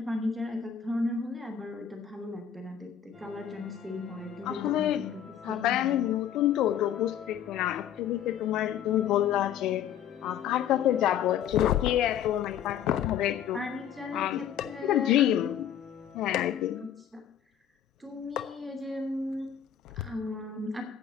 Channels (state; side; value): quieter; right; 9.5 dB